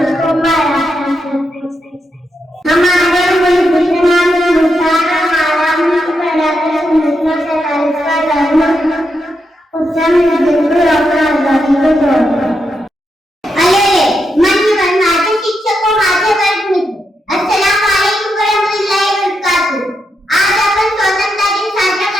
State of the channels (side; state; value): both; normal; correlation 0.83